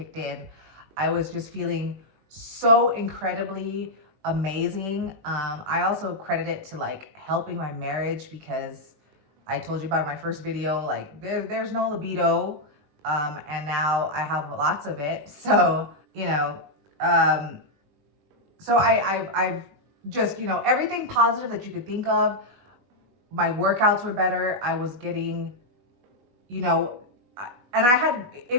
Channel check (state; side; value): late; left; 21 ms